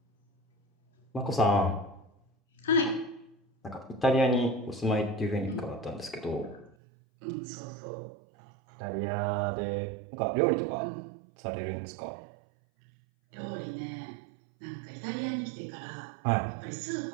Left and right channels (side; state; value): left; drops out; at 6.8 s